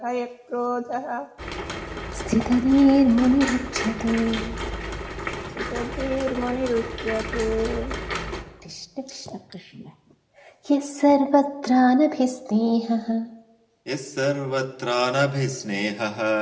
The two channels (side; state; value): both; identical; correlation 1.00